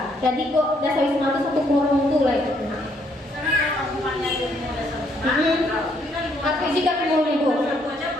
Jadi kok dasar wisma itu satu korong tuh lah itu. Tapi jika mau lego,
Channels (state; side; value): normal; both; correlation 0.70